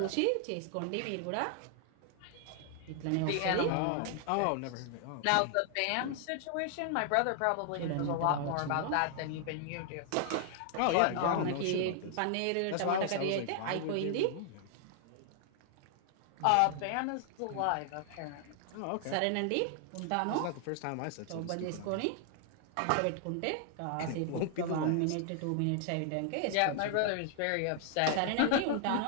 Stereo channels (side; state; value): both; different; correlation 0.00